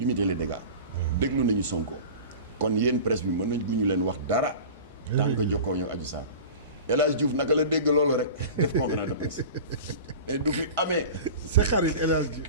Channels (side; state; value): both; inverted; correlation -0.35